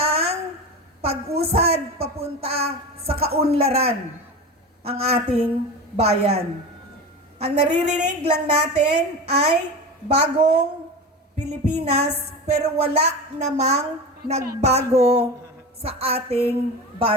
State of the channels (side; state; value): both; normal; correlation 0.27